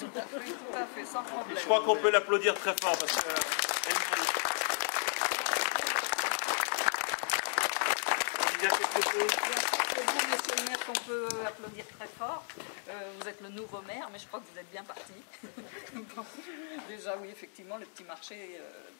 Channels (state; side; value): silent; right; 55 dB below the other